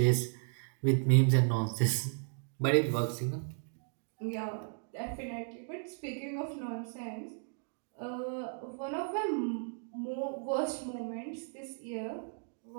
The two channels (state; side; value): silent; left; 55 dB below the other